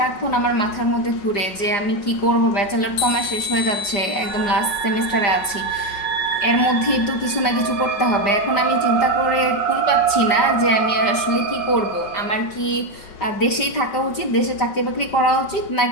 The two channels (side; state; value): right; late; 5.0 ms